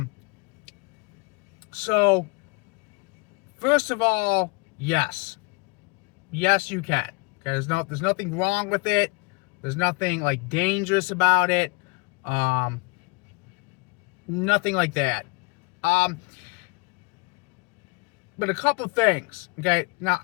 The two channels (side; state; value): right; quieter; 28.6 dB